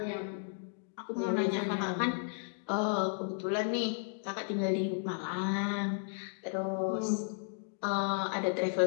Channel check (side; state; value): right; silent; digital silence